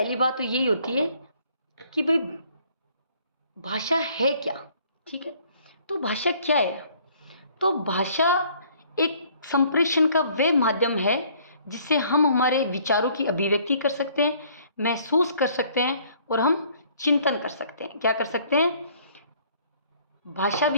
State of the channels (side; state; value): both; inverted; correlation -0.59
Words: बात तो यही होती है कि भाई भाषा है क्या, ठीक है। तो भाषा क्या है? तो भाषा एक संप्रेषण का वह माध्यम है जिससे हम हमारे विचारों की अभिव्यक्ति कर सकते हैं, महसूस कर सकते हैं और हम चिंतन कर सकते हैं। क्या कर सकते हैं? भाषा